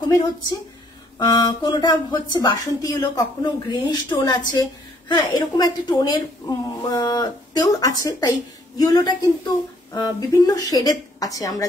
হচ্ছে, কোনোটা হচ্ছে বাসন্তী ইয়েলো, কখনো গ্রিনিশ টোন আছে, হ্যাঁ এরকম একটা টোনের তেও আছে। তাই ইয়েলোটা কিন্তু বিভিন্ন শেডের আছে আমরা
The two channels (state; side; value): normal; both; correlation 0.64